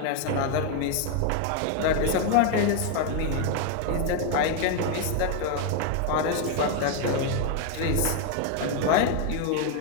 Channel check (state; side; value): different; both; correlation 0.01